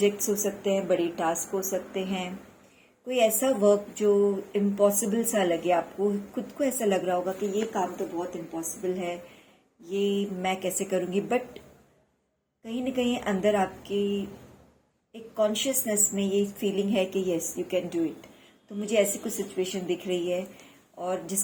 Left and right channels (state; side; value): identical; both; correlation 1.00